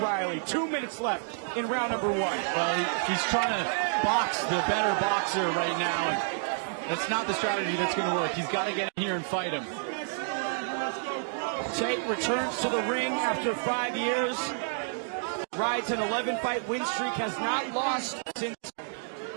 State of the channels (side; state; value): left; silent; digital silence